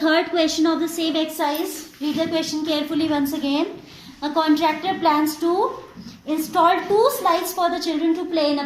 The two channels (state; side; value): identical; both; correlation 1.00